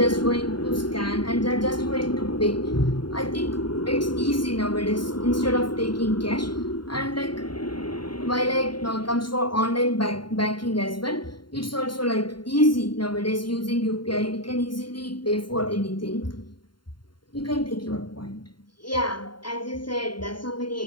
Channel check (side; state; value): right; late; 0.72 ms